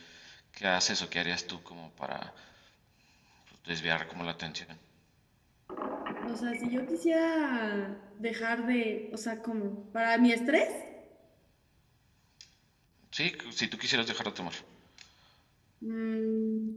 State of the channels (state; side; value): identical; both; correlation 1.00